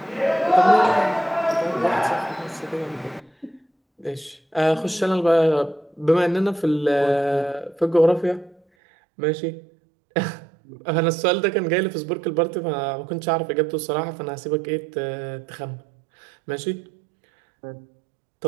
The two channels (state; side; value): drops out; left; at 8.6 s